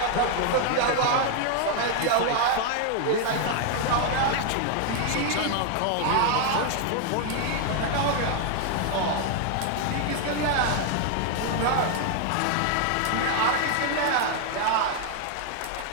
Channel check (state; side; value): different; both; correlation 0.00